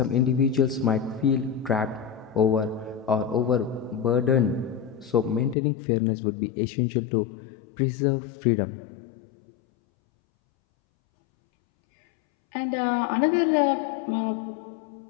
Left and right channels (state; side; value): drops out; right; at 5.6 s